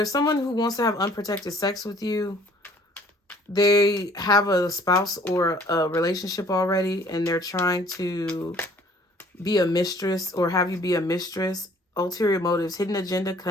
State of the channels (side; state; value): both; normal; correlation 0.56